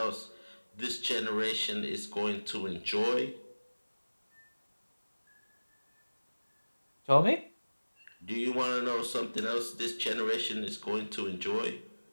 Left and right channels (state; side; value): inverted; both; correlation -1.00